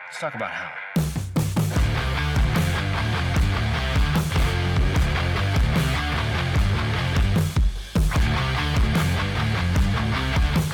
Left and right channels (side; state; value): both; identical; correlation 1.00